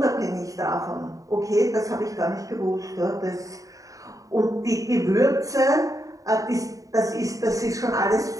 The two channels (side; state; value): left; late; 0.16 ms